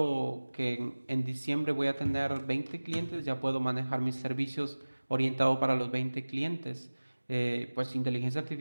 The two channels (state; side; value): inverted; both; correlation -1.00